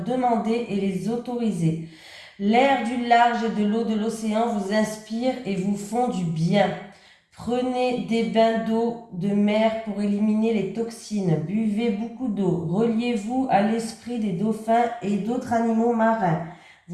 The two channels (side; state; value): both; identical; correlation 1.00